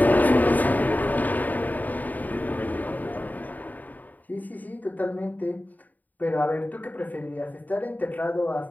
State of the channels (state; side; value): late; right; 0.082 ms